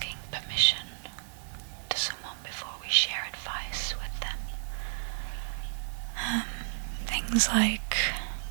permission to someone before we share advice with them. Things like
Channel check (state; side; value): silent; left; digital silence